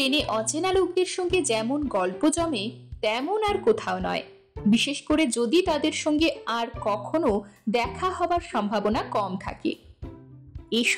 অচেনা লোকদের সঙ্গে যেমন গল্প জমে তেমন আর কোথাও নয়, বিশেষ করে যদি তাদের সঙ্গে আর কখনো দেখা হবার সম্ভাবনা কম থাকে।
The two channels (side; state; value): both; identical; correlation 1.00